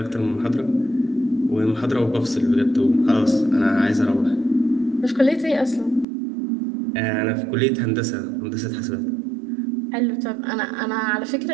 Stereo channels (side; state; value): left; drops out; at 6.1 s